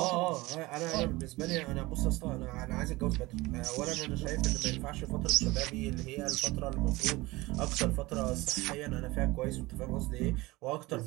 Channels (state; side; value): quieter; left; 21.1 dB